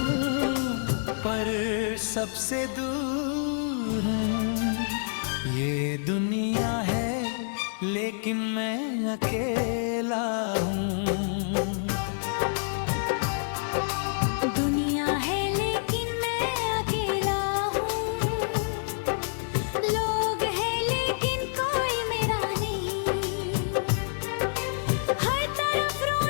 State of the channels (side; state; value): right; silent; digital silence